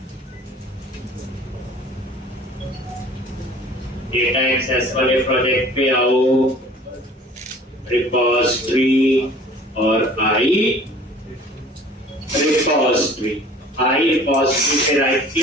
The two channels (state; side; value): normal; both; correlation 0.48